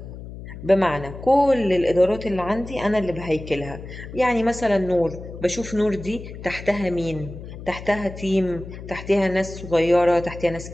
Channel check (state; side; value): noise; left; hum, 12 dB below the sound